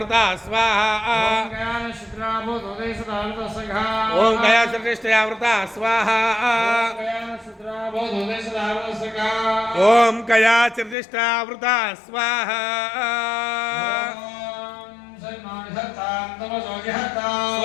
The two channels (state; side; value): drops out; right; at 11.0 s